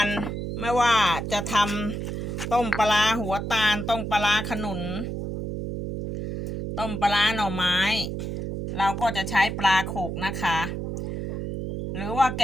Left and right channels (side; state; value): right; noise; hum, 4 dB below the sound